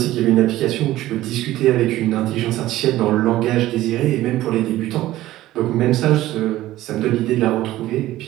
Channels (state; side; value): quieter; left; 15.4 dB